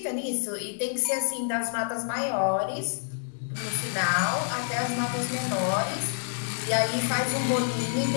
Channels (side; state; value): right; silent; digital silence